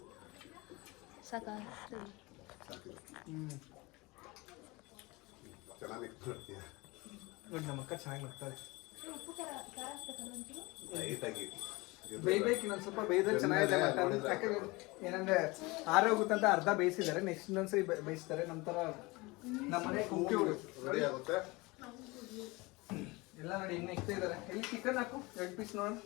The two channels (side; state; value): right; quieter; 23.8 dB